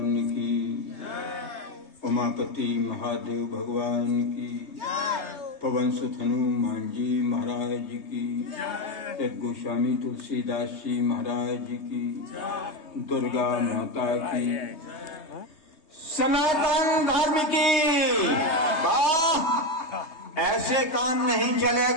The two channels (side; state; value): right; late; 3.2 ms